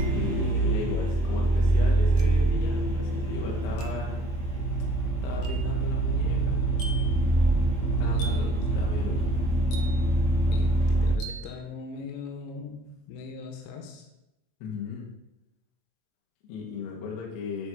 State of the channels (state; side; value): late; right; 24 ms